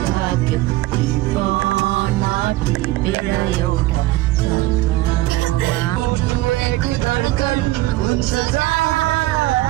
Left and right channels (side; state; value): left; quieter; 17.8 dB